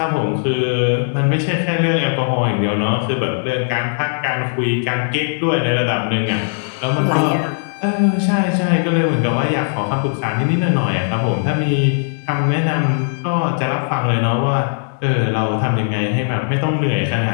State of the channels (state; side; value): silent; right; 63 dB below the other